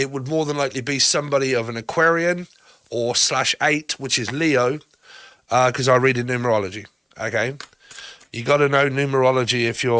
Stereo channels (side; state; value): both; identical; correlation 1.00